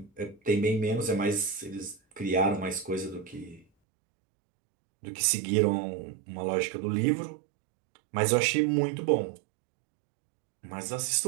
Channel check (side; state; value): left; drops out; at 3.7 s